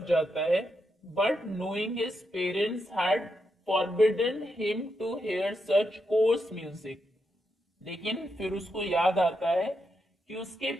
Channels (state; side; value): normal; both; correlation 0.83